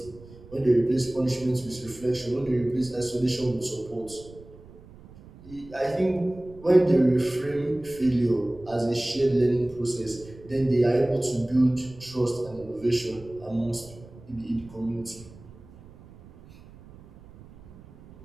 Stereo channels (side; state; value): right; noise; rumble, 21 dB below the sound